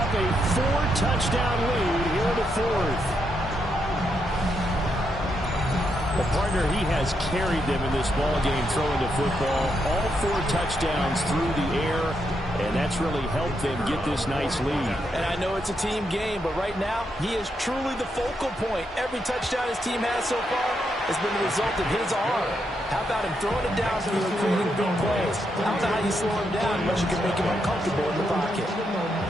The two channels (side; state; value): both; normal; correlation 0.81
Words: a 4-touchdown lead here in the fourth. Well, partner, he has carried them in this ball game throwing the football. All 4 touchdowns through the air, and that's really helped them get this nice lead. And I know it's a team game, but right now, he is truly the focal point. Every touchdown his team has so far has been the result of his arm. How about him throwing it downfield and creating big plays? How about how you slow him down, but you can make him uncomfortable in the pocket?